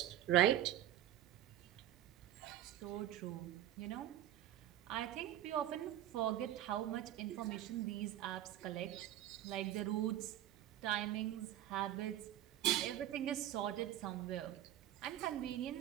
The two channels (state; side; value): quieter; left; 12.6 dB